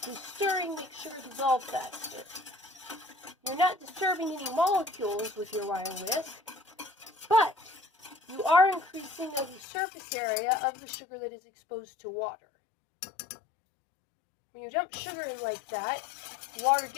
does stirring make sugar dissolve faster? You're not disturbing any molecules with your wire whisk, but you are increasing the surface area of the sugar that is exposed to water. When you dump sugar in like that, water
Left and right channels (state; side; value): drops out; right; at 9.6 s